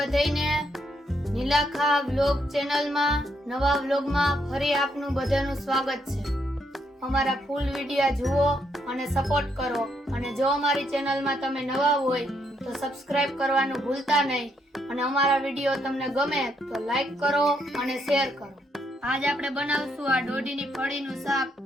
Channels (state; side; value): normal; both; correlation 0.76